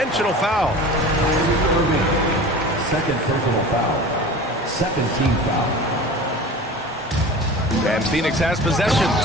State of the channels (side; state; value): both; normal; correlation 0.36